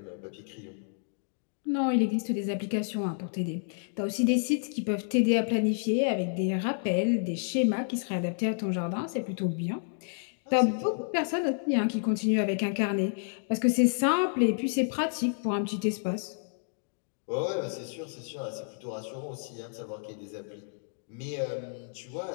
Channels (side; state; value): right; silent; digital silence